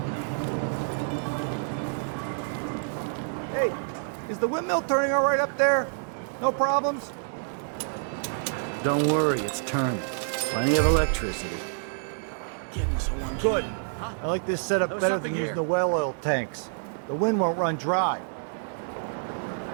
Hey, is the windmill turning all right up there? No problems? Don't worry, it's turning. Plenty of electricity. Good. I like this setup better than using the well oil tanks. The wind won't run dry.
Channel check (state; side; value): silent; left; digital silence